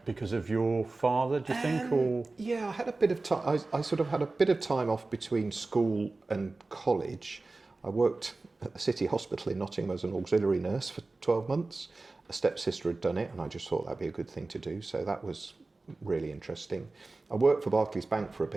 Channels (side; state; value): left; quieter; 3.4 dB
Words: father? Do you think, or Yeah, I had a bit of time. I sort of had a bit of time off between school and college. I worked at the City Hospital in Nottingham as an auxiliary nurse for 12 months. A stepsister had done it, and I just thought that'd be a good thing to do. So that was really interesting. I worked for Barclays Bank for a